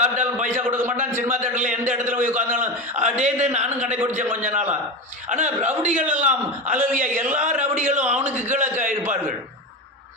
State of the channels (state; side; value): normal; both; correlation 0.20